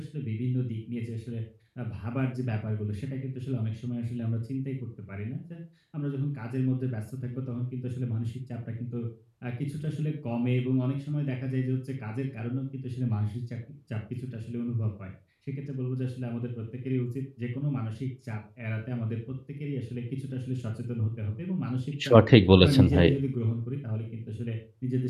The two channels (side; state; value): both; identical; correlation 1.00